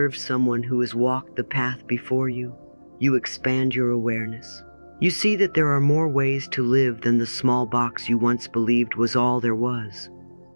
someone who has walked the path before you, you expand your awareness. You see that there are more ways to live than the small box you once believed was all there was.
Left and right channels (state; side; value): inverted; both; correlation -1.00